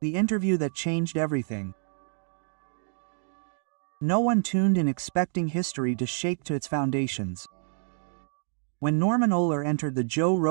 The interview that changed everything. No one tuned in expecting history to shake to its foundations. When Norman Ohler entered the Joe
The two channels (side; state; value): left; silent; digital silence